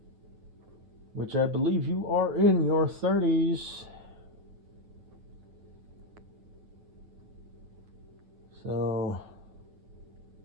which I believe you are in your 30s. So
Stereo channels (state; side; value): late; left; 9.3 ms